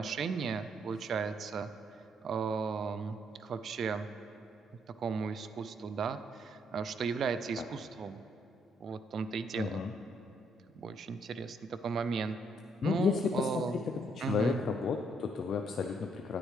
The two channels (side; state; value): both; normal; correlation 0.71